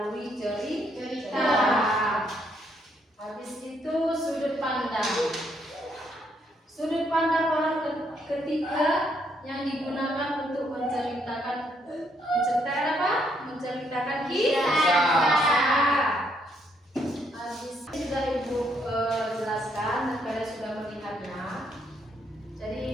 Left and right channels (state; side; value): normal; both; correlation 0.73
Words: cerita. Habis itu sudut pandang. Sudut pandang orang ketiga yang digunakan untuk menceritakan apa? Menceritakan kisah. Habis ini sudah Ibu jelaskan dan kalian sudah melihatnya. Jadi